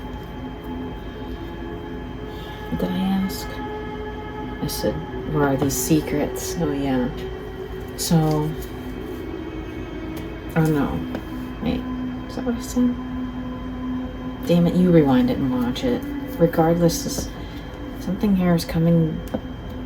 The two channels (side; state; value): both; identical; correlation 1.00